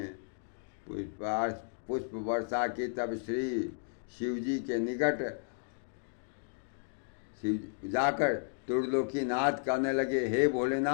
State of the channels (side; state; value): right; silent; digital silence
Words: पुष्प वर्षा की। तब श्री शिवजी के निकट जाकर त्रिलोकीनाथ कहने लगे, हे